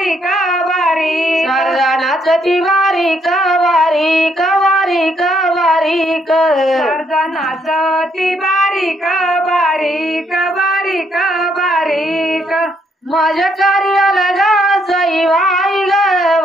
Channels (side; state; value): both; normal; correlation 0.72